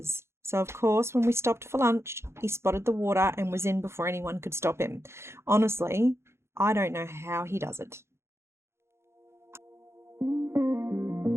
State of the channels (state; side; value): late; left; 0.13 ms